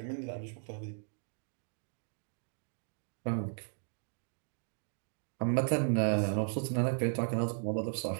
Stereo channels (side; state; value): left; silent; digital silence